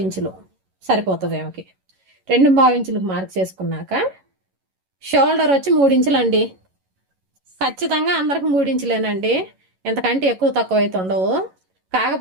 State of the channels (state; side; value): late; left; 11 ms